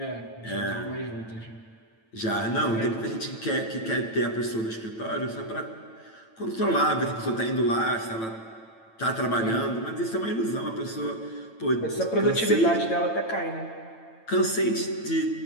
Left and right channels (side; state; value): right; late; 9.0 ms